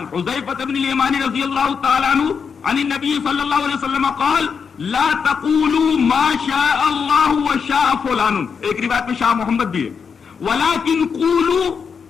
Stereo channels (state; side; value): quieter; right; 6.1 dB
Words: حذیفہ بن الیمان رضی اللہ تعالی عنہ عن النبی صلی اللہ علیہ وسلم قال لا تقولوا ما شاء اللہ وشاء فلان. ایک روایت میں شاہ محمد بھی ہے, ولكن قولوا